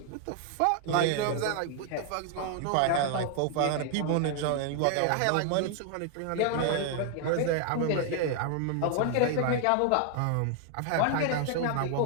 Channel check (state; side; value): different; both; correlation 0.00